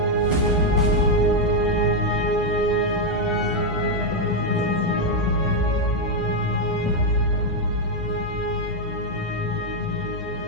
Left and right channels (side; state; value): both; normal; correlation 0.01